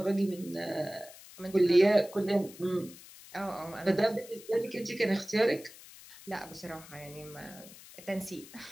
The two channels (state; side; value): noise; left; hiss, 18 dB below the sound